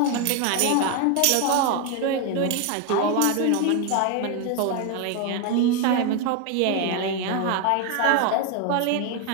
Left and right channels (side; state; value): both; different; correlation 0.01